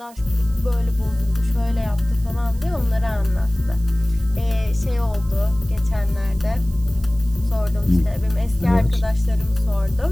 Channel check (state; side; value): noise; right; hiss, 24 dB below the sound